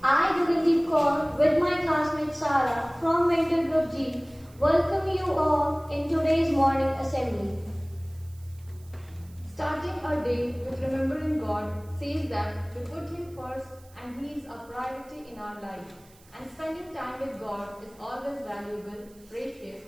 I, Gagandeep Kaur, with my classmate Sara from Mentor Group G, welcome you all in today's morning assembly. Starting our day with remembering God says that we put Him first and He is a priority in our life. And spending time with God is always valuable, precious,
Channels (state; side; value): noise; right; hiss, 27 dB below the sound